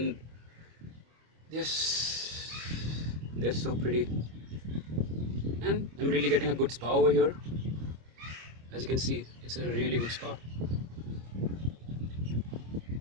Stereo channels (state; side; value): late; left; 25 ms